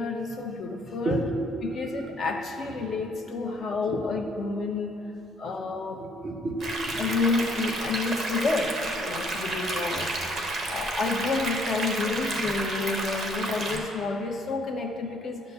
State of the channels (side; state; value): both; normal; correlation 0.64